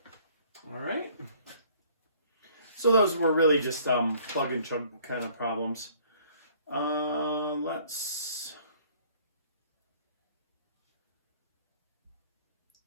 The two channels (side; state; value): both; inverted; correlation -0.57